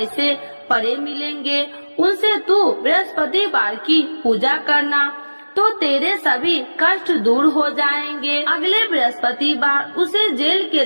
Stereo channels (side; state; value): both; inverted; correlation -1.00